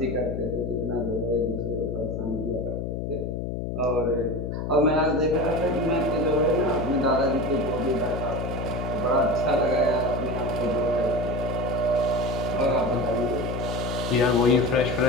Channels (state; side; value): noise; left; hum, 4 dB below the sound